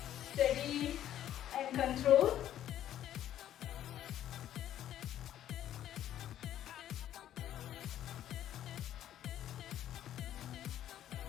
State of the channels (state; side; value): quieter; right; 11.6 dB